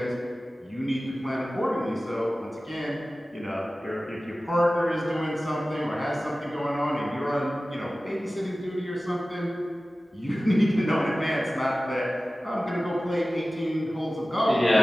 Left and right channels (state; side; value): normal; both; correlation 0.96